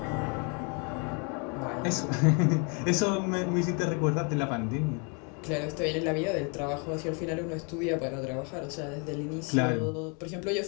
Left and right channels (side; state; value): right; quieter; 35.5 dB